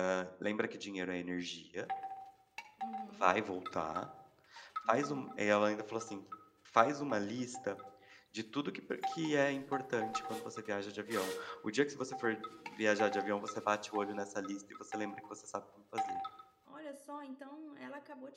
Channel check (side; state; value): both; identical; correlation 1.00